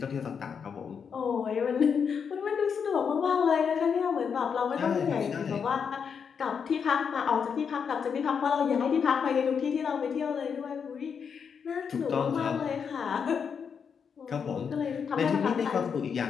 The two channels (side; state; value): right; quieter; 6.6 dB